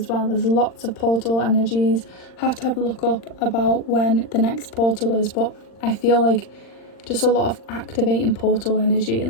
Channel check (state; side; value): late; right; 39 ms